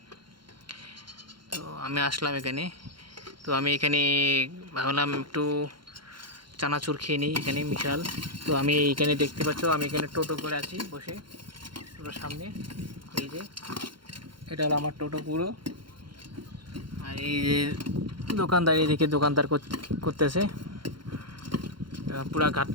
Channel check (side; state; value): left; late; 0.73 ms